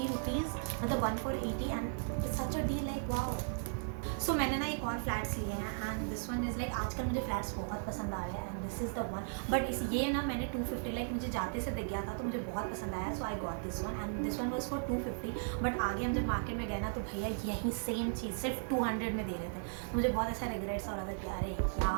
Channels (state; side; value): silent; left; digital silence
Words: rupees, मतलब 1 for 80 and it's such a deal, like wow. सो मैंने ना एक और फ्लैट्स लिए हैं and this one is like आजकल मुझे फ्लैट्स बहुत पसंद आ रहे हैं and this is the one, but इस ये ना मैंने 250 लाइक मुझे जाते से दिख गया था तो मुझे बहुत पसंद आया, so I got this one and this one was for 250, but आगे हम जब मार्केट में गए ना तो भैया यही सेम चीज़ सिर्फ 200 में दे रहे थे, तो मुझे बहुत ऐसा रिग्रेट्स हो रहा था कि अरे